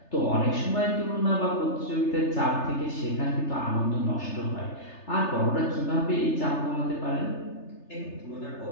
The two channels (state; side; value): late; right; 3.3 ms